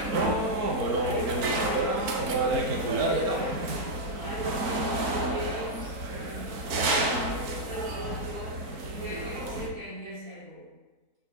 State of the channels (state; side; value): late; left; 3.8 ms